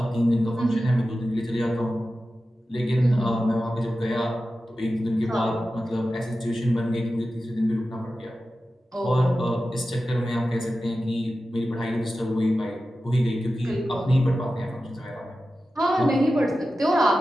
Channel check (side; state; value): both; normal; correlation 0.93